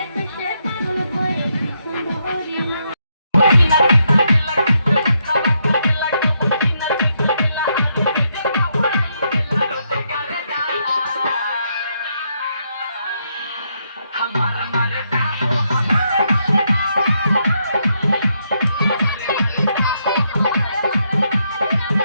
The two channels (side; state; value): both; inverted; correlation -0.78